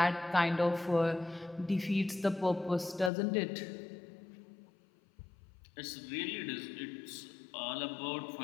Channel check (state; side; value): drops out; right; at 3.1 s